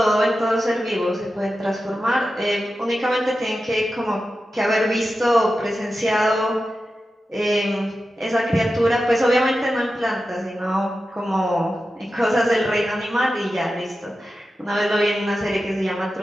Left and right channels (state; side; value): normal; both; correlation 0.92